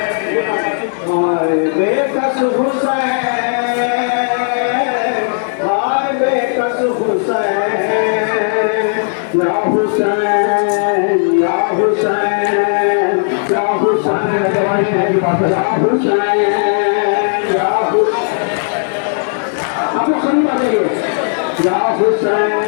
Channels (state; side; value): silent; right; digital silence